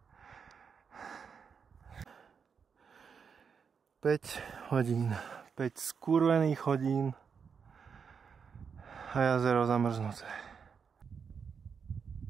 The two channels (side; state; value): left; quieter; 6.3 dB